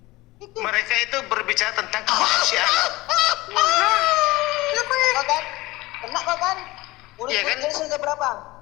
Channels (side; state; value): right; quieter; 20.0 dB